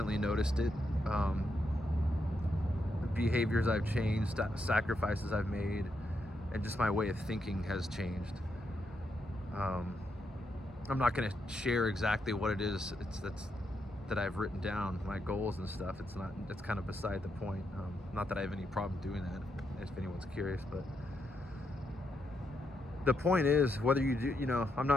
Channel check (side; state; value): both; normal; correlation 0.81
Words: noticed it. Behaviors I've changed, sacrifices I've made, and just my way of thinking has changed. I'm not going to share exactly what it is that I've written down, my goals and stuff. It's kind of beside the point. Not that I have any problem doing that, if anyone's curious, but the point is, whether you do, I'm